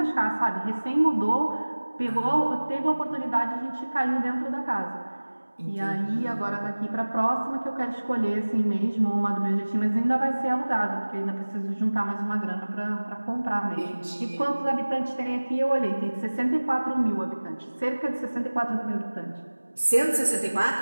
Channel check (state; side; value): inverted; both; correlation -1.00